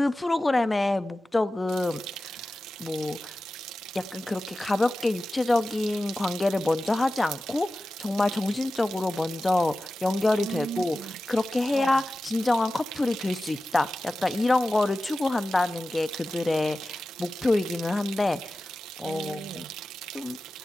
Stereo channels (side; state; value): both; normal; correlation 0.94